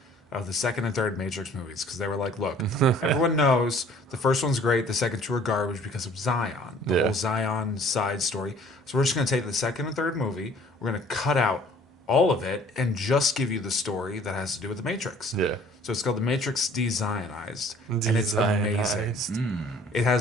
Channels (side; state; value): both; normal; correlation 0.53